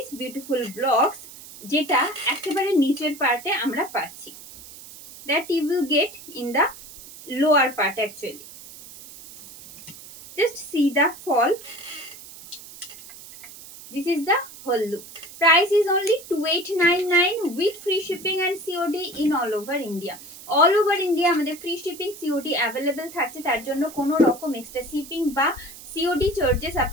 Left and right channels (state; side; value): noise; right; hiss, 17 dB below the sound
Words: beautiful blocks যেটা একেবারে নিচের পার্টে আমরা পাচ্ছি, that you will get in the lower part actually. Just see the fall. This is the whole look. Price is only 2899 with free shipping and COD in all over India. All over India আমাদের free shipping COD available থাকছে, তার জন্য কোনো রকম extra shipping বা COD charges